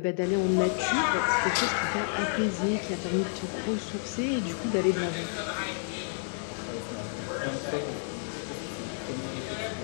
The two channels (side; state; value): right; silent; 55 dB below the other